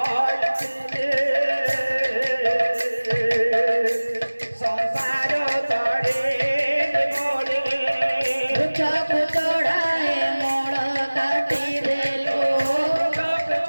চক চড়ায় মোড় কাটি দেলো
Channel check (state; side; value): inverted; both; correlation -1.00